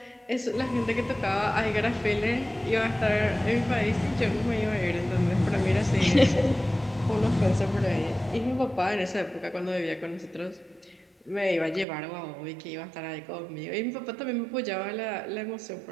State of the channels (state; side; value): drops out; left; at 11.9 s